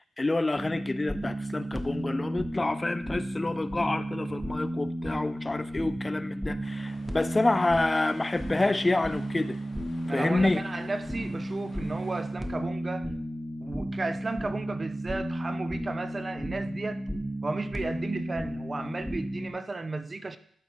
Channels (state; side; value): normal; both; correlation 0.96